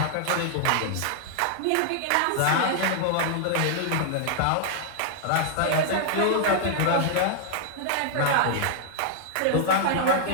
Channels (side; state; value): both; different; correlation -0.01